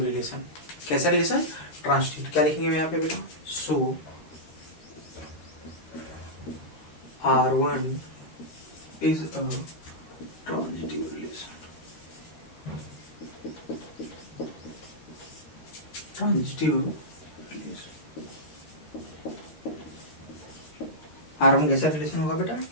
रिलेशन। कैसा रिलेशन, ट्रांजिटिव। क्या लिखेंगे यहाँ पे बेटा, सो R1 is a transitive relation. Transitive R1 कैसा रिलेशन होगा बेटा?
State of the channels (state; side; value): late; right; 13 ms